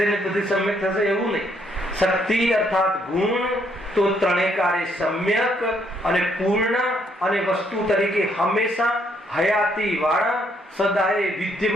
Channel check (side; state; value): both; normal; correlation 0.71